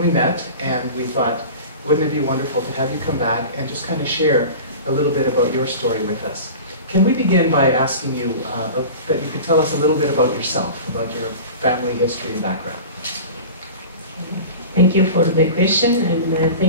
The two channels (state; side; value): inverted; both; correlation -0.35